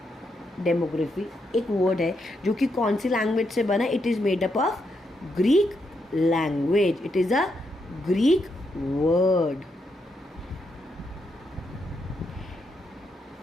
डेमोग्राफी एक वर्ड है जो कि कौन सी लैंग्वेज से बना. It is made up of Greek language. It is a Greek word.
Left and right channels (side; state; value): both; normal; correlation 0.80